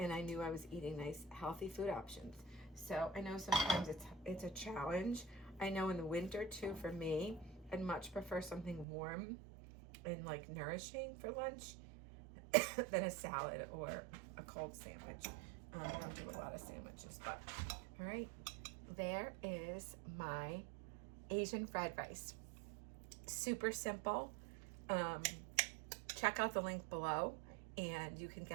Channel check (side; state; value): left; drops out; at 8.8 s